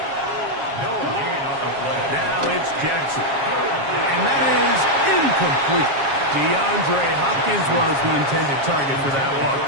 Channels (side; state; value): left; late; 7.3 ms